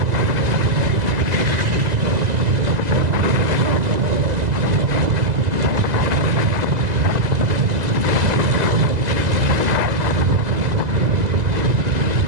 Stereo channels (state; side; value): late; left; 2.0 ms